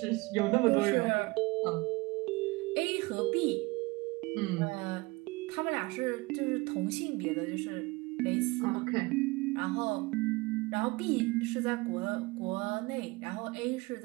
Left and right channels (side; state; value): left; quieter; 23.7 dB